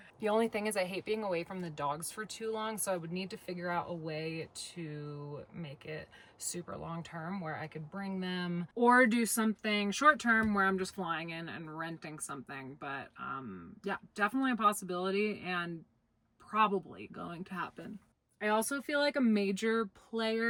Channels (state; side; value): identical; both; correlation 1.00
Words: The only thing is I hate being away from the dogs for too long, so I would need to figure out a way to make it super long term where I could bring them, or do something short term where I'm just flying in and renting something. But yeah, definitely a possibility and probably going to happen. I also feel like a major